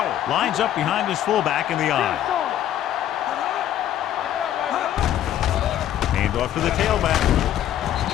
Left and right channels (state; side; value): quieter; right; 11.5 dB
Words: lines up behind his fullback in the eye. Hand off to the tailback.